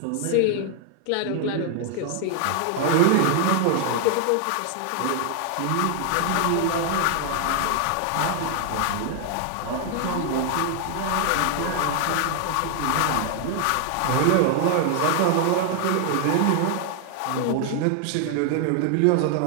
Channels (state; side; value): different; both; correlation 0.00